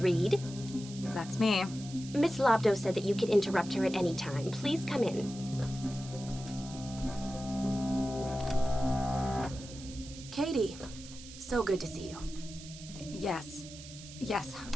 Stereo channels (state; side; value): noise; right; hiss, 15 dB below the sound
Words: Reed? That's me. Miss Lobdow said that you could interrupt her at any time. Please come in. Katie, so good to see you. Yes. Yes.